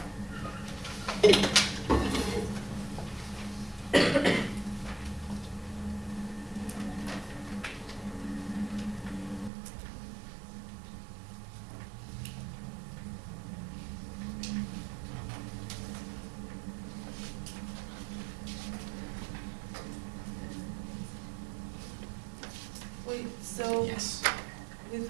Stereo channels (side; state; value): left; drops out; at 9.5 s